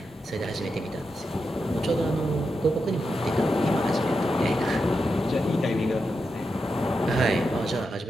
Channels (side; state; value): both; normal; correlation 0.87